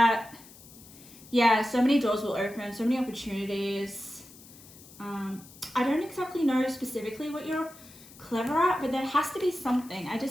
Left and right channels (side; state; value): left; noise; hiss, 21 dB below the sound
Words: yeah, so many doors will open, so many opportunities. I don't exactly know specifically what you're clever at, but there has to be something.